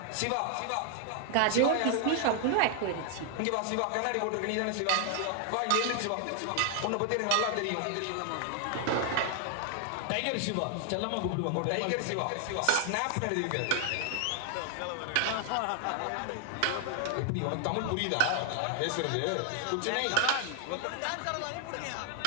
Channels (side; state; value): both; different; correlation 0.00